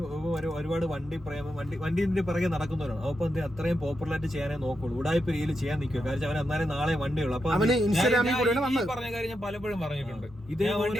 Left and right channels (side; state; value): both; normal; correlation 0.86